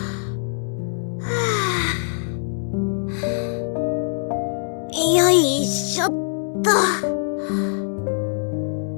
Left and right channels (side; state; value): right; silent; 64 dB below the other